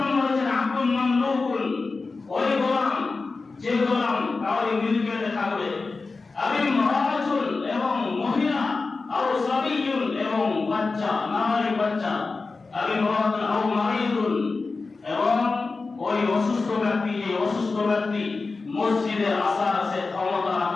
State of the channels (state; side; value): quieter; right; 4.0 dB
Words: হচ্ছে আব্দুল মামলুকুন, ওই গোলাম যে গোলাম কাউরি মিলকিয়তে থাকবে, আবি মুরাতুন এবং মহিলা, আও সাবিয়ুন এবং বাচ্চা নাবালিগ বাচ্চা, আবি মুরাতুন আও মারিদুন এবং ওই অসুস্থ ব্যক্তি, এই অসুস্থ ব্যক্তি মসজিদে আসার সে ক্ষমতা